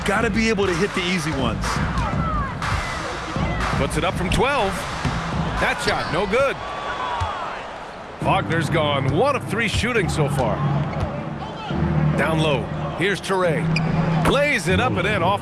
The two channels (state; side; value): identical; both; correlation 1.00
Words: got to be able to hit the easy ones. Puts it up from 12. That shot, no good. Wagner's gone 1 of 3 shooting so far. Down low. Here's Traore. Lays it up and in